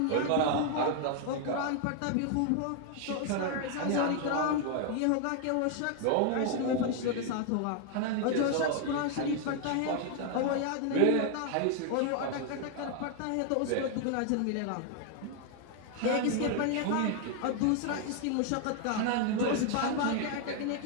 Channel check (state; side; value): different; both; correlation 0.00